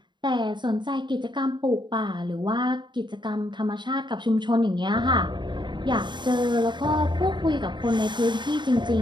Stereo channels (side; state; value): left; late; 0.22 ms